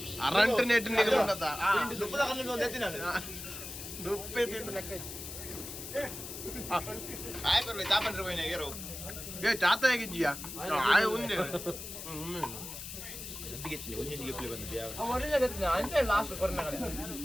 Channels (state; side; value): noise; left; hiss, 9 dB below the sound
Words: ಅರಂಟ್ ನೆಟ್ ನಿಗಲುಂಡತ ದುಪ್ಪದ ಕಣ್ಣು ಒಂದು ಎತ್ತಿನ ದುಪ್ಪೆ ತಿಂದು ಲೆಕ್ಕ ಆಯ್ ಬರ್ಲಿ ತಾಪಂಡ್ರೆ ಹೋಯ್ನ ಏರೋ ಏ ಚಾತ ಹೇಗಿದ್ದೀಯಾ ಆಯ್ ಉಂದೆ ಗಟ್ಟಿಗೆತ್ತಿನಿ ಒಂದೊಂದು ಗೆಪ್ಪಲಿ ಬಂದಿದ್ದೆ ಯಾವ ಒರಿಜಿನಲ್ ಗೆತ್ತಿನ ಅಂತೆ ಲಾಸ್ಟ್ ಕೊರೋನಾಗಡೆ